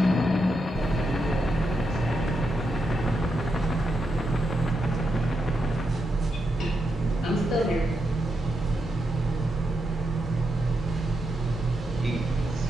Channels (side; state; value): both; normal; correlation 0.84